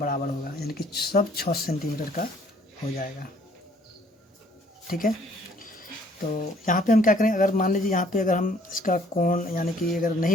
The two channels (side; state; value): both; normal; correlation 0.60